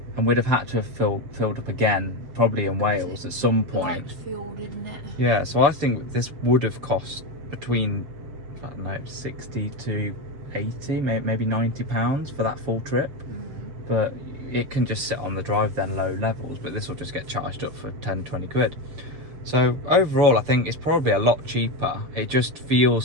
and we'd have had to have filled up again, probably in Wales at some point. Light fuel, didn't it? Yeah, so I think this would have cost between, I don't know, 60 to 80, maybe £90 for that full trip. But it can just sit on the drive then, low levels, but this will just get charged up for 10-20 quid. So overall, I think it's probably a lot cheaper. It just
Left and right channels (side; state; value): left; late; 7.7 ms